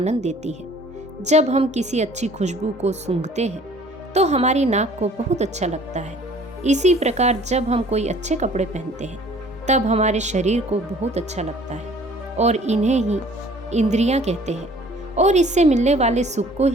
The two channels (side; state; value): both; normal; correlation 0.53